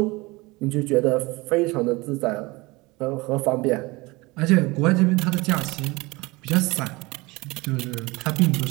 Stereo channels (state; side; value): quieter; left; 23.2 dB